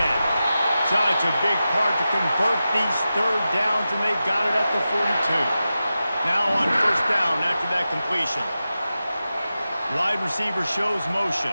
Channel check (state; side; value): inverted; both; correlation -0.93